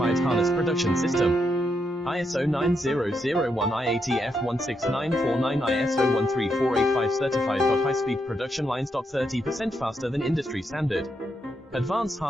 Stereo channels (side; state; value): both; normal; correlation 0.81